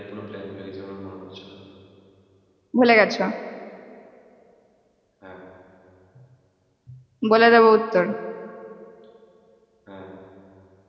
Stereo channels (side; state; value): both; identical; correlation 1.00